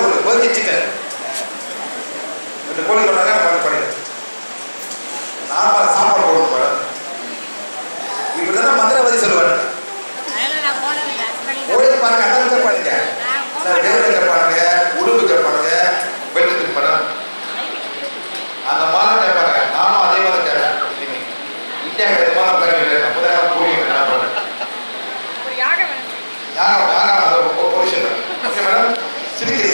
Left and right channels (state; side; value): inverted; both; correlation -1.00